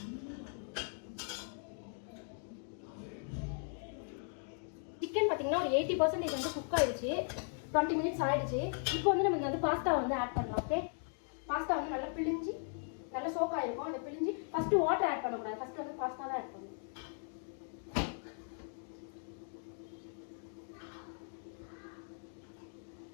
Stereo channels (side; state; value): right; silent; 52 dB below the other